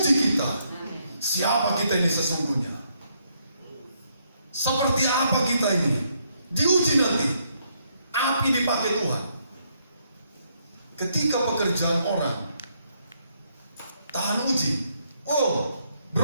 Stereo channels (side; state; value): both; inverted; correlation -0.74